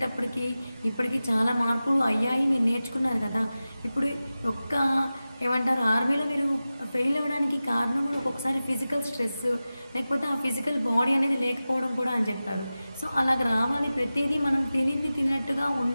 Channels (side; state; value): both; inverted; correlation -0.95